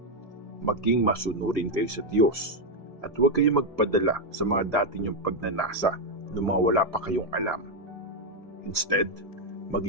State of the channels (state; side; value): normal; both; correlation 0.03